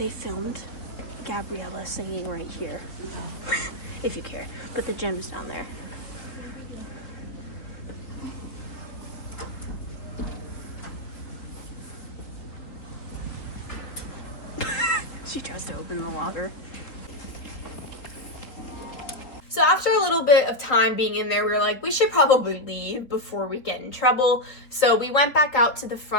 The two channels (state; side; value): late; right; 3.6 ms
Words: filmed Gabriella singing right here, if you care, but the gym's down there. She tries to open the water. So after a little bit of time being in there, we were like, we should probably leave before we get in trouble. So we went back out to the